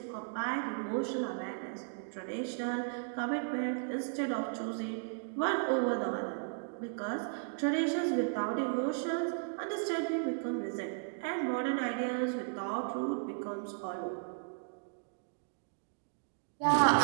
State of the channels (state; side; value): silent; left; digital silence